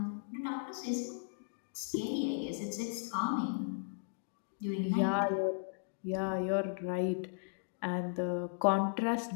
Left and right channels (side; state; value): right; silent; digital silence